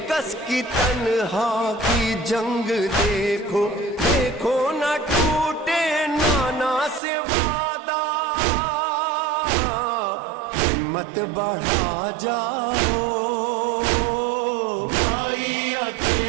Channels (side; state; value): left; drops out; at 7.0 s